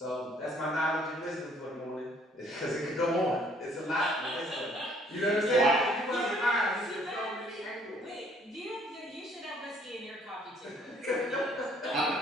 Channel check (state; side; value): normal; both; correlation 0.62